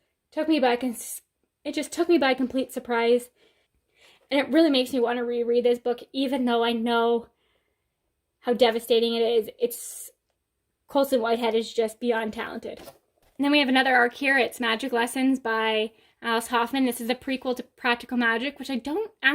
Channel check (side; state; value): both; identical; correlation 1.00